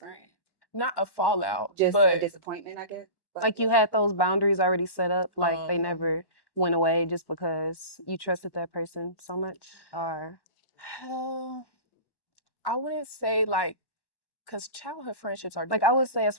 not a fallout, Just a but disappointment, I guess. Like you had those boundaries already set up, like they um, never went away just because you trusted that person so much, or I wouldn't say like because childhood friendships are like I would different. say as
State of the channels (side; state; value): right; late; 1.1 ms